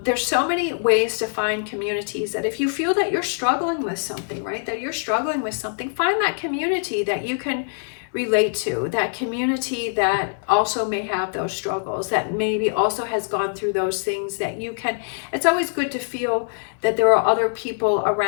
There's so many ways to find communities, that if you feel that you're struggling with something, right, that you're struggling with something, find that community that you can relate to, that community that also may have those struggles, that maybe also has gone through those things, that you can, it's always good to feel that there are other people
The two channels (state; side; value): silent; right; digital silence